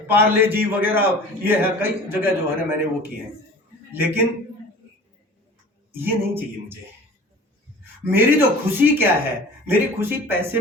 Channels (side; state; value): both; normal; correlation 0.42